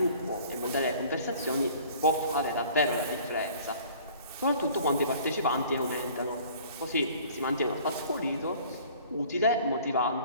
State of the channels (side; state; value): both; inverted; correlation -0.51